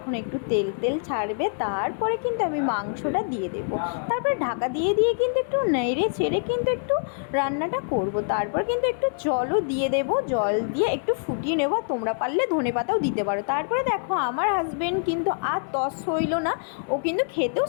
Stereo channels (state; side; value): silent; right; 62 dB below the other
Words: একটু তেল তেল ছাড়বে তারপরে কিন্তু আমি মাংসটা দিয়ে দেবো। তারপরে ঢাকা দিয়ে দিয়ে কিন্তু একটু নেড়ে ছেড়ে কিন্তু একটু রান্নাটা করব। তারপর কিন্তু একটু জলও দিয়ে দেবো, জল দিয়ে একটু ফুটিয়ে নেবো। তোমরা পারলে ধনেপাতাও দিতে পারো। তারপরে দেখো আমার হাজব্যান্ড কিন্তু আর তস হইল না, ও কিন্তু খেতেও